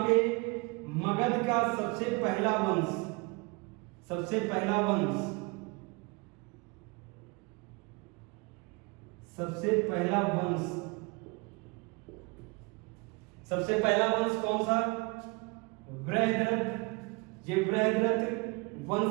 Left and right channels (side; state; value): left; quieter; 29.0 dB